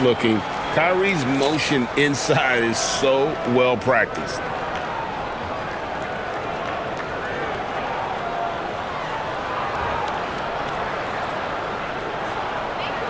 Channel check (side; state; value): both; identical; correlation 1.00